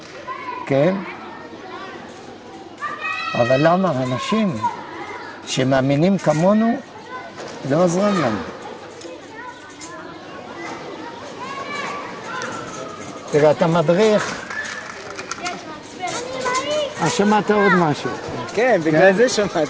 כן? אבל למה אנשים שמאמינים כמונו לא עוזרים לנו? תראה, אתה מדריך. שמעת עוד משהו. כן, בגלל זה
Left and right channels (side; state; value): both; identical; correlation 1.00